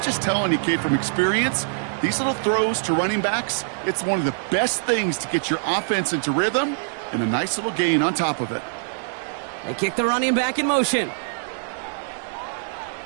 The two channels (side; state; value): left; silent; digital silence